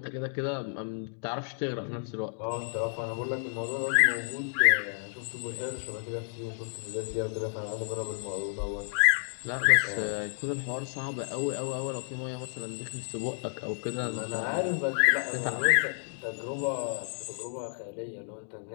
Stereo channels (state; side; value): silent; right; digital silence